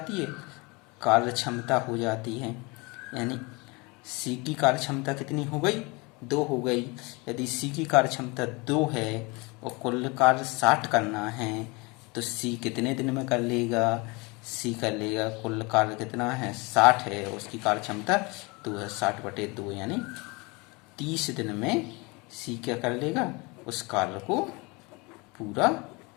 है, कार्य क्षमता हो जाती है। यानी सी की कार्य क्षमता कितनी हो गई, 2 हो गई। यदि सी की कार्य क्षमता 2 है और कुल कार्य 60 करना है तो सी कितने दिन में कर लेगा, सी कर लेगा, कुल कार्य कितना है 60 है, उसकी कार्य क्षमता 2 है, 60/2 यानी 30 दिन में सी क्या कर लेगा, उस कार्य को पूरा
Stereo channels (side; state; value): right; quieter; 26.9 dB